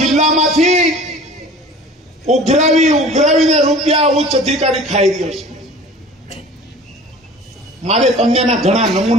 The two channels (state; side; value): normal; both; correlation 0.43